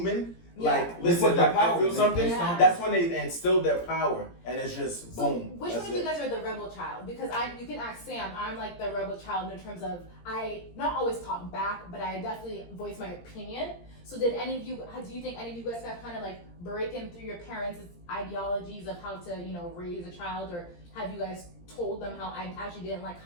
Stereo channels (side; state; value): right; late; 17 ms